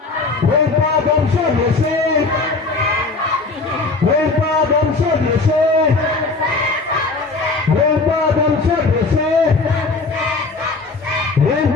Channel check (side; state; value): right; quieter; 3.8 dB